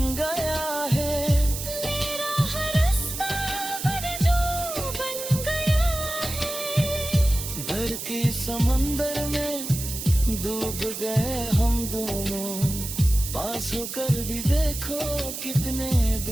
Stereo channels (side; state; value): right; noise; hiss, 7 dB below the sound